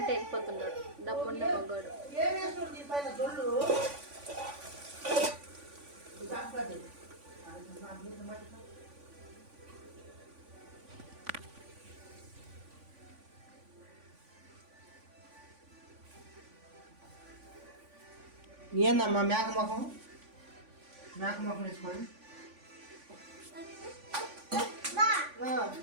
వెళ్ళిపోతున్నాడు డబ్బున్న మగ్గాడు. ఏందమ్మా మేక ముఖం వేసుకొని?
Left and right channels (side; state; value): left; late; 3.5 ms